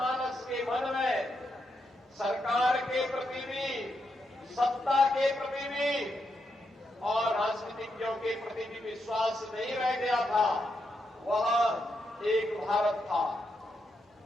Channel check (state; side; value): normal; both; correlation 0.82